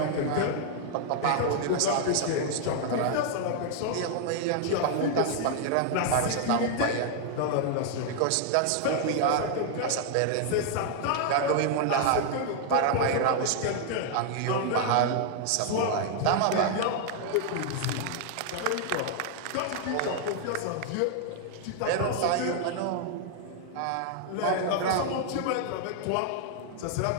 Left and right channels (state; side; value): different; both; correlation 0.00